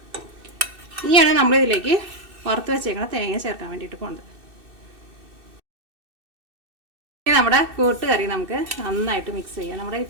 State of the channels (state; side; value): late; left; 2.6 ms